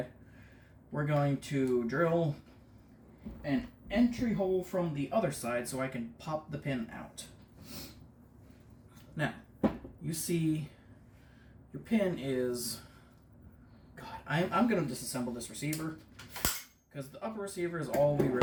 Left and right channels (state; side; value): identical; both; correlation 1.00